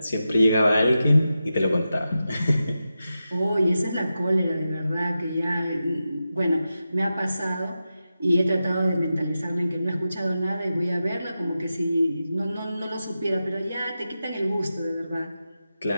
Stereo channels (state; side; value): inverted; both; correlation -0.91